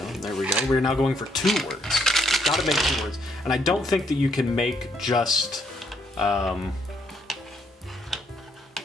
There we go. We're now going for 2 words. Gotta make 2 words. And I don't think that you can make just 1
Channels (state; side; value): normal; both; correlation 0.72